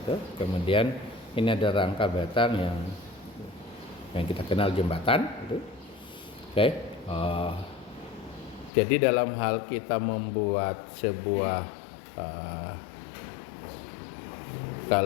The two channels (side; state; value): right; drops out; at 8.7 s